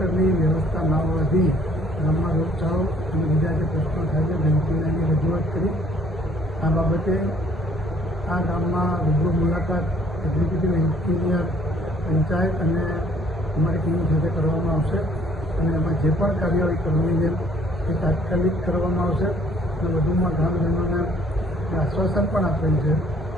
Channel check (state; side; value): normal; both; correlation 0.60